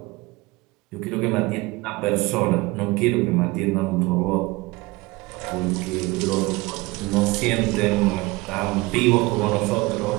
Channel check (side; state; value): left; quieter; 22.1 dB